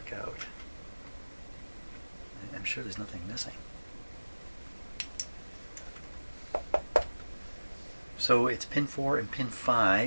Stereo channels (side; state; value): both; inverted; correlation -1.00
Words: out? I'm sure there's nothing missing. So it's pin 4 and pin